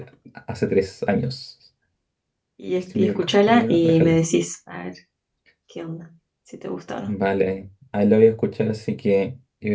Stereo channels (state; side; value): identical; both; correlation 1.00